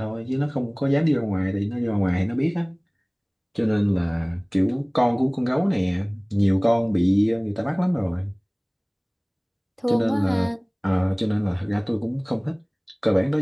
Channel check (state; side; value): identical; both; correlation 1.00